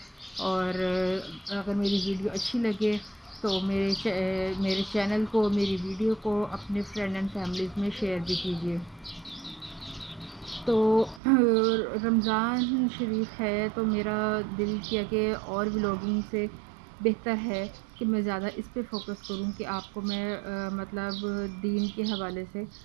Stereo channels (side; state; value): left; drops out; at 11.2 s